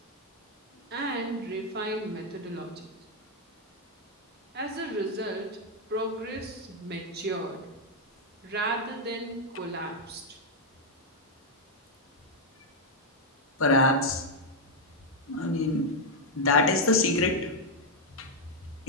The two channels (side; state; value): both; normal; correlation 0.00